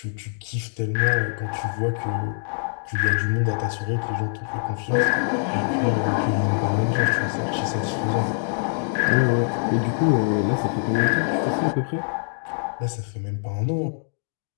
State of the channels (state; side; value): silent; right; 63 dB below the other